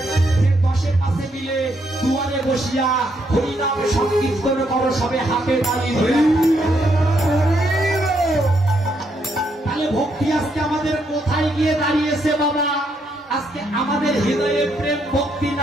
যে 10 পাশে মিলে দুয়ারে বসিয়া হরিনাম সংকীর্তন করো, সবে হাতে তালি ধরে। তাহলে ভক্তি আজকে আমাদের কোথায় গিয়ে দাঁড়িয়েছে বাবা? আজকে আমাদের হৃদয়ে প্রেম ভক্তি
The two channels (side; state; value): both; normal; correlation 0.75